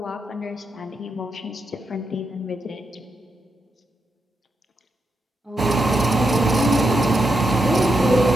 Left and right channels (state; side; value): normal; both; correlation 0.84